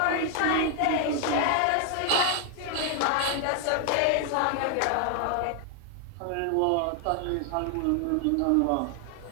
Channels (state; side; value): different; both; correlation 0.00